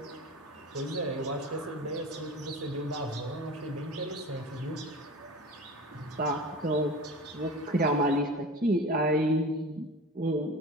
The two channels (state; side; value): normal; both; correlation 0.33